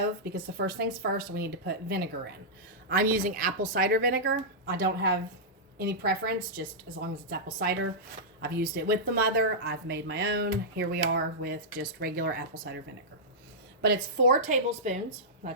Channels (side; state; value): both; normal; correlation -0.11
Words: because the first things first, we need to put vinegar in. I'm using apple cider vinegar. I don't have any preference, just as long as it's apple cider. I've used it with the mother. I've made my own. Here we are with just regular apple cider vinegar. But it's 4 tablespoons.